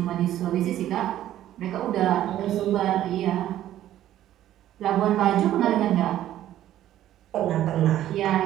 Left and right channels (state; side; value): quieter; left; 12.6 dB